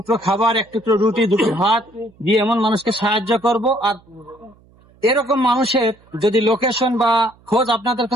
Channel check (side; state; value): right; noise; hum, 30 dB below the sound